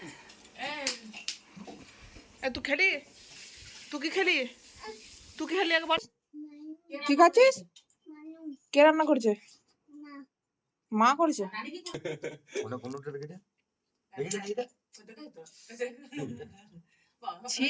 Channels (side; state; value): both; identical; correlation 1.00